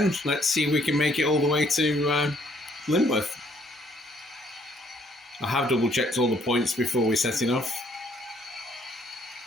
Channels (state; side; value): normal; both; correlation 0.65